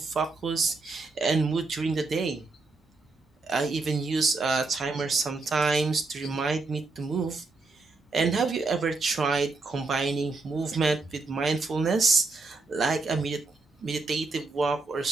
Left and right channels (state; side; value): quieter; left; 3.8 dB